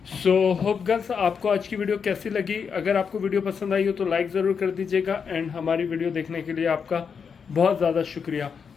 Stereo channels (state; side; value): quieter; right; 6.3 dB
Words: सो होप गर्ल्स आपको आज की वीडियो कैसी लगी? अगर आपको वीडियो पसंद आई हो तो लाइक ज़रूर कर दीजिएगा, एंड हमारी वीडियो देखने के लिए आपका बहुत ज़्यादा शुक्रिया।